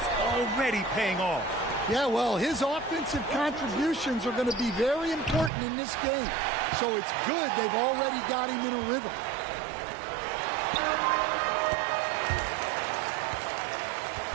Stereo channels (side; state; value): left; drops out; at 5.5 s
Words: already paying off. Yeah, well, his offensive contributions are going to be very important in this game. So it's good they've already got him in a rhythm.